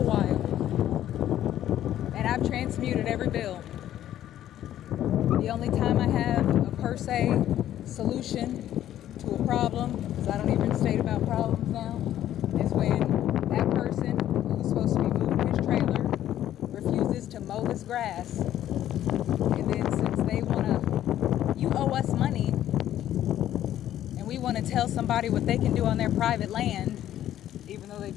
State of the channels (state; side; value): quieter; right; 12.0 dB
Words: And I've transmuted every bill. The only time I have a per se solution to a problem, because I don't even state about problems now, is when that person who's supposed to be moving his trailer refuses to mow his grass. And then since they you owe us money, and we want to tell somebody what they can do on their private land, even though they